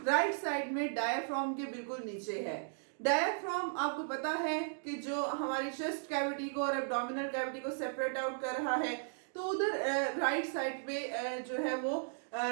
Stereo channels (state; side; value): silent; left; digital silence